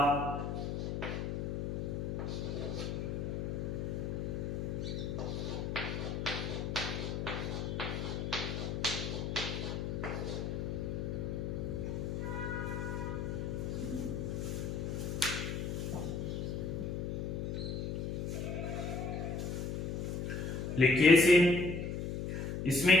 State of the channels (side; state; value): left; noise; hum, 2 dB below the sound